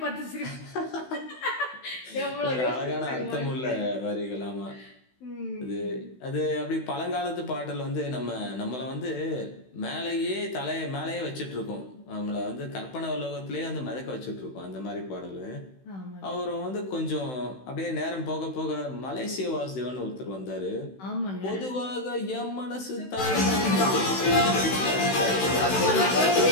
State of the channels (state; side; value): late; right; 16 ms